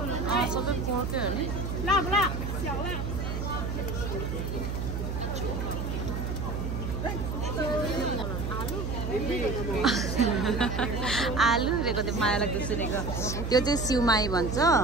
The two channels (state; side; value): noise; right; hum, 3 dB below the sound